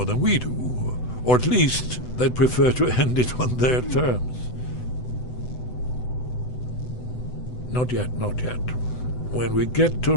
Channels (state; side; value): late; right; 8.0 ms